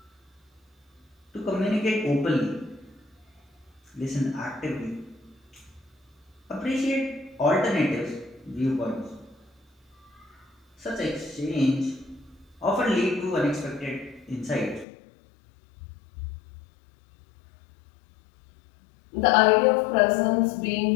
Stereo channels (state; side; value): drops out; right; at 14.9 s